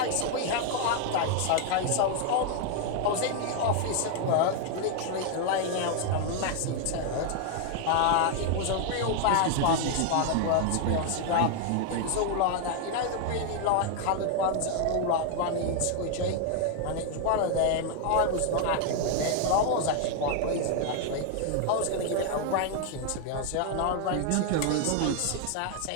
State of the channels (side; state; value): both; different; correlation 0.00